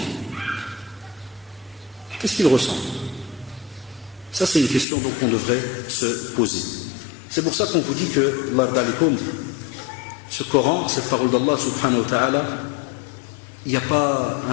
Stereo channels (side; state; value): right; drops out; at 4.9 s